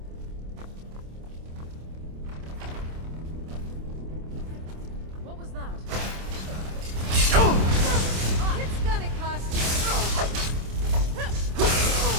What was that? It's gonna cost you.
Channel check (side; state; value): left; late; 26 ms